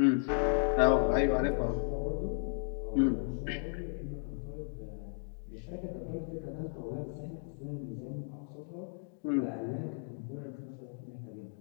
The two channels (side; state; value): right; silent; 55 dB below the other